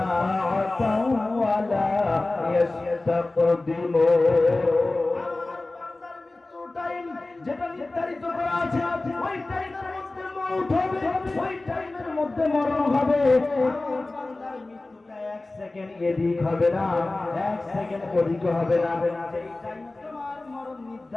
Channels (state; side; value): quieter; right; 3.0 dB